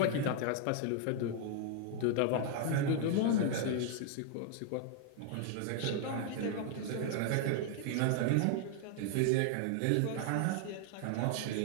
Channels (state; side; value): different; both; correlation 0.00